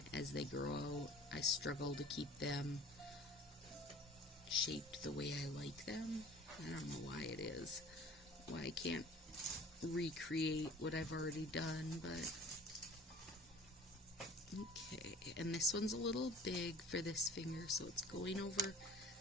as they grow I struggle to keep them shaped the way I like them? I don't know why it is. Why I can't recreate what I've already done, but okay. And this one's a little big for this finger, so it's going over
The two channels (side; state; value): both; normal; correlation 0.46